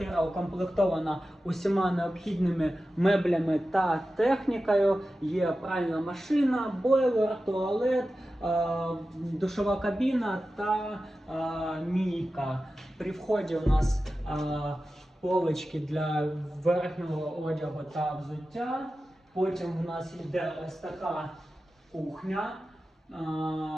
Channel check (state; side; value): normal; both; correlation 0.93